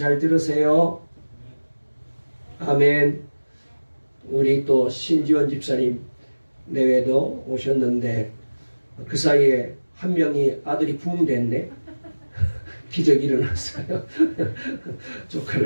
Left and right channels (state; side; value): inverted; both; correlation -1.00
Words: 들으세요. 아멘. 우리 또 신지원 집사님 내외도 오셨는데 그 사이에 한 명이 아들이 부흥됐네. 기적이 일어났어요.